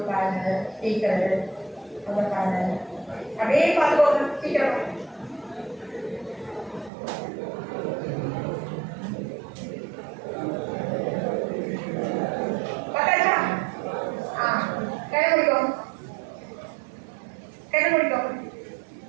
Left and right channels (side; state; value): left; drops out; at 6.9 s